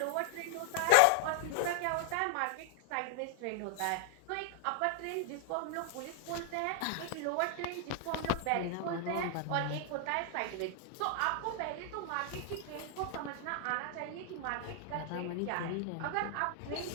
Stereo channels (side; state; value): both; different; correlation 0.00